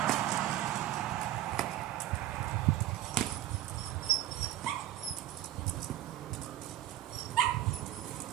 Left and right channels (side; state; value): left; quieter; 13.5 dB